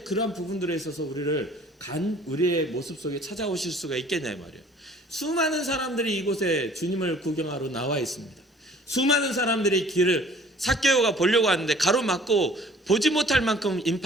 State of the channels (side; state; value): both; normal; correlation 0.53